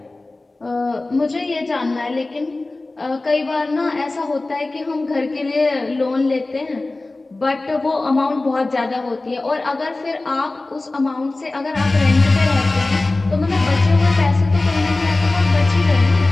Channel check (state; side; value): quieter; right; 3.1 dB